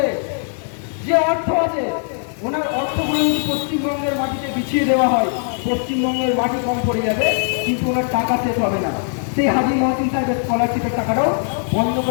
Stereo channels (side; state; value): right; silent; 66 dB below the other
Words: যে অর্থ আছে, ওনার অর্থগুলো যদি পশ্চিমবঙ্গের মাটিতে বিছিয়ে দেওয়া হয়, পশ্চিমবঙ্গের মাটি কম পড়ে যাবে, কিন্তু ওনার টাকা শেষ হবে না। সেই হাজি মহসিন সাহেবের স্কলারশিপের টাকাটাও বন্ধ